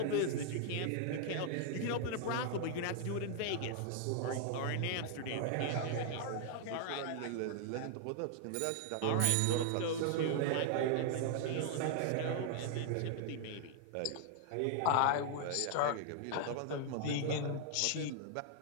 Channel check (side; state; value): both; different; correlation -0.01